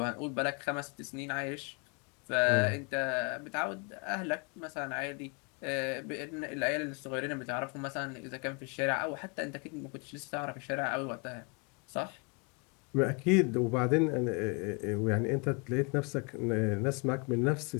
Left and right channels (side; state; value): right; quieter; 33.3 dB